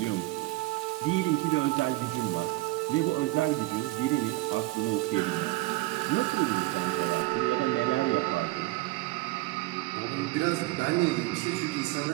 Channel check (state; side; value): quieter; left; 19.2 dB